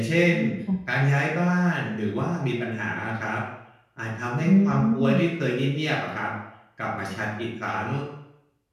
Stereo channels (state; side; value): identical; both; correlation 1.00